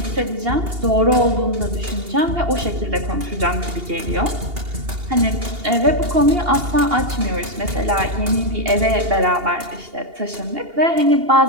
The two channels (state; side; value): late; left; 2.8 ms